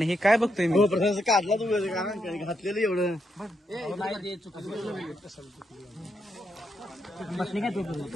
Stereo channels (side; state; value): both; normal; correlation 0.81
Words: हे काय बघतोय मी? काढला तू घातलेलं एवढं बसले काय